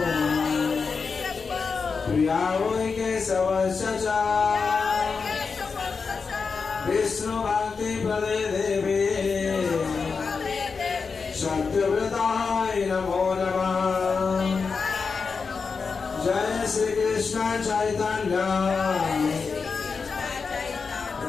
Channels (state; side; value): quieter; right; 5.1 dB